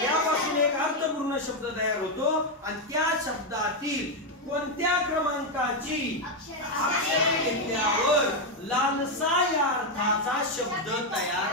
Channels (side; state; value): both; normal; correlation 0.04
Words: यापासून एक अर्थपूर्ण शब्द तयार होतो आणि त्या शब्दातील कोणत्या क्रमांकाची अक्षरे घेतल्यावर लालसा या अर्थाचा शब्द